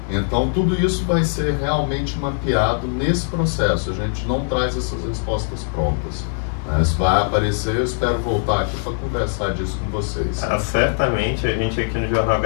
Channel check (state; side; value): silent; right; 65 dB below the other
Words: Então, tudo isso vai ser realmente mapeado nesse processo. A gente não traz essas respostas prontas. Isso vai aparecer, eu espero voltar aqui para conversar disso com vocês. Certamente, a gente aqui no Jornal